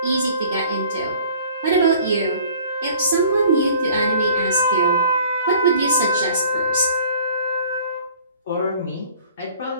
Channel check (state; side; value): inverted; both; correlation -0.51